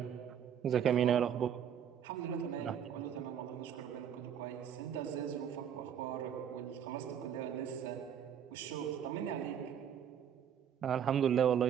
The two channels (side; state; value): left; quieter; 8.8 dB